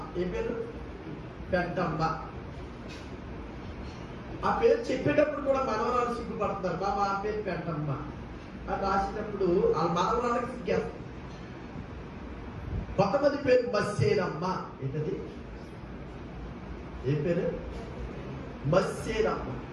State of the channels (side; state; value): both; identical; correlation 1.00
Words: ఏ పేరు? పెంటమ్మ. ఆ పేరు చెప్పేటప్పుడు కూడా మనవరాలు సిగ్గుపడుతున్నారు. బాబా ఆ పేరు పెంటమ్మ అని రాసేటప్పుడు ఆ మనవరాలకు సిగ్గేస్తారు. కొంతమంది పేరు మస్సేనమ్మ. ఏంటది? ఏ పేరు? మస్సేనమ్మ.